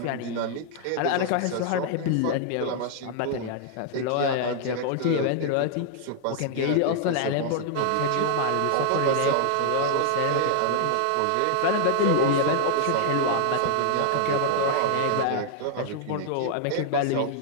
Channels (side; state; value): both; different; correlation -0.01